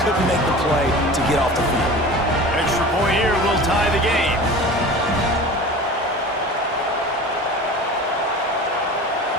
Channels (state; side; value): normal; both; correlation 0.36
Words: couldn't make the play to get off the field. Extra point here will tie the game.